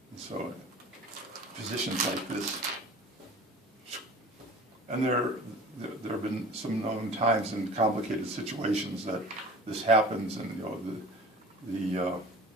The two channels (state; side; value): normal; both; correlation 0.40